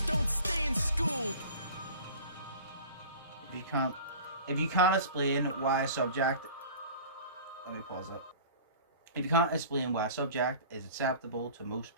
don't stay in school. If you can't explain why a subject, let me pause that. If you can't explain why a subject is acceptable to most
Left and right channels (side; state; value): both; inverted; correlation -0.41